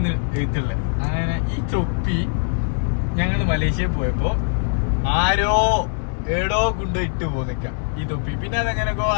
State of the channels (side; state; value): right; silent; digital silence